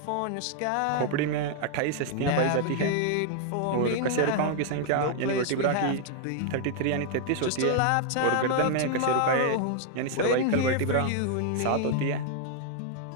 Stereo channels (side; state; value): both; different; correlation 0.00